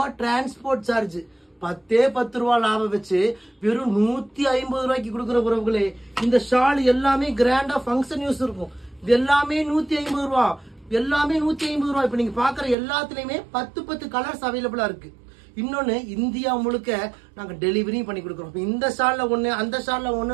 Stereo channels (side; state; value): left; drops out; at 12.8 s